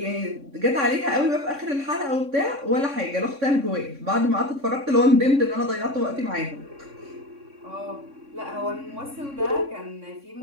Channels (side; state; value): left; late; 3.6 ms